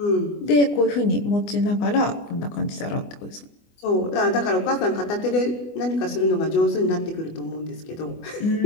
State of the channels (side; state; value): right; late; 24 ms